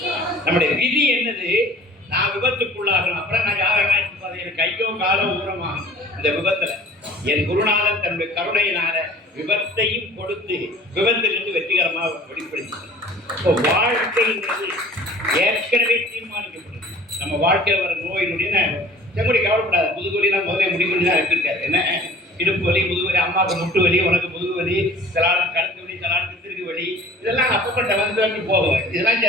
நம்முடைய விதி என்னது? நான் விபத்துக்குள்ளாகணும். அப்புறம் நான் யாரெல்லாம் எனக்கு கையோ காலோ ஊரமாகும் இந்த விபத்துல. என் குருநாதன் தன்னுடைய கருணையினால விபத்தையும் கொடுத்து விபத்திலிருந்து வெற்றிகரமாக வெளிப்படுத்தி வாழ்க்கைங்கிறது ஏற்கனவே தீர்மானிக்கப்படுது. நம்ம வாழ்க்கையில் வர நோயினுடைய செங்குடி கவலைப்படாது. முதுகுவலினா முதல்ல முடிவுன்னு தான் இருக்காரு. என்ன இடுப்பு வலி, முதுகுவலி, அம்மாவுக்கு முட்டு வலி, உனக்கு முதுகு வலி, சிலாளுக்கு கழுத்து வலி, சிலாளுக்கு திருகு வலி, இதெல்லாம் அப்பப்பட்ட வந்து போகும். இதெல்லாம்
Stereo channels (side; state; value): both; normal; correlation 0.48